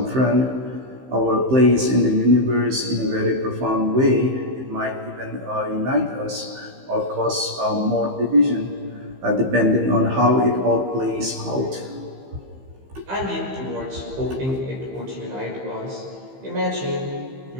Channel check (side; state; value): left; late; 15 ms